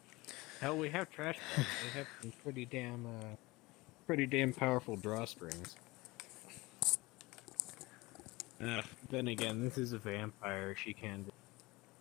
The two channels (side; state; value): right; quieter; 21.9 dB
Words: Hell, we have trash bags. They have some pretty damn powerful drawstrings. Then again, this is a vampire. She can.